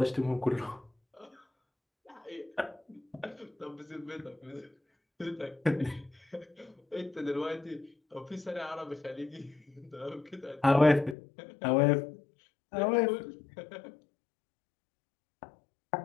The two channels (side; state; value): right; drops out; at 11.2 s